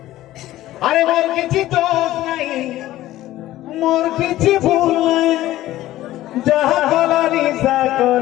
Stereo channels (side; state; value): right; quieter; 15.1 dB